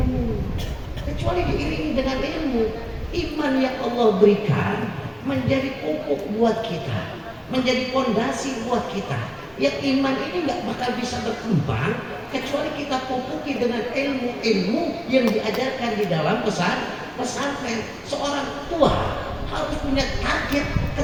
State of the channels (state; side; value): identical; both; correlation 1.00